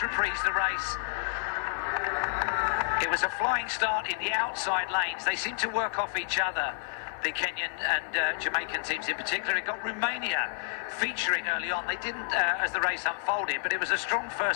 reprise the race. It was a flying start in the outside lanes. They seem to work off each other, the Kenyan and Jamaican teams in particular. It got Romania featuring early on. They didn't as the race unfolded, but it was a strong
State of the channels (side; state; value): right; silent; digital silence